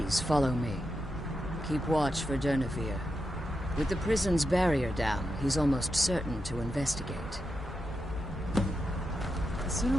follow me. Keep watch for Durnevere. With the prison's barrier down, he's almost certain to investigate. The sooner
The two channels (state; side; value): normal; both; correlation 0.87